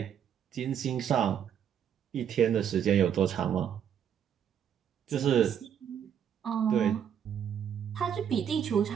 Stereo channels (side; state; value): left; quieter; 8.7 dB